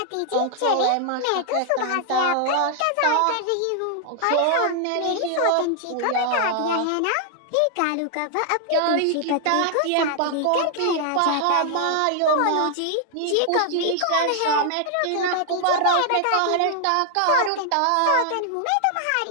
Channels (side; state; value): both; different; correlation 0.00